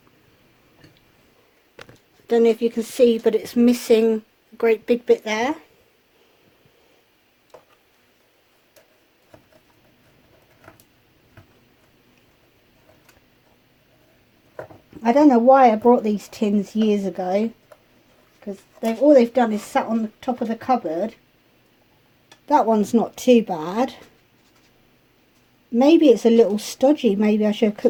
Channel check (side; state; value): both; identical; correlation 1.00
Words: Don't know if you can see, but it's missing a great big bit there. I don't know why I brought these tins years ago, because all they've done is sat on the top of the cupboard. That one's not too bad. Maybe it's a little stodgy. Maybe I should have